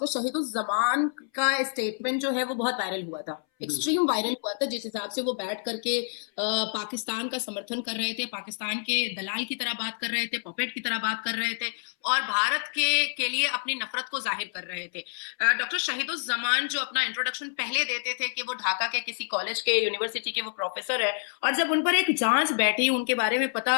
शहीदुज़्ज़मान का स्टेटमेंट जो है वो बहुत वायरल हुआ था, एक्सट्रीम वायरल हुआ था, जिस हिसाब से वो बैठ करके पाकिस्तान का समर्थन कर रहे थे, पाकिस्तान के दलाल की तरह बात कर रहे थे, पपेट की तरह बात कर रहे थे और भारत के लिए अपनी नफरत को जाहिर कर रहे थे। डॉक्टर शहीदुज़्ज़मान जो अपना इंट्रोडक्शन पहले देते थे कि वो ढाका के किसी कॉलेज के यूनिवर्सिटी के वो प्रोफेसर है, और जब उन पर एक जांच बैठी उनके बारे में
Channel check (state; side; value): silent; right; 59 dB below the other